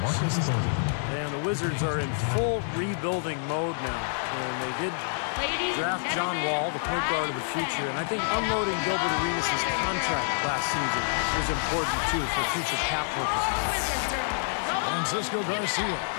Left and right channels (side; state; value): right; silent; digital silence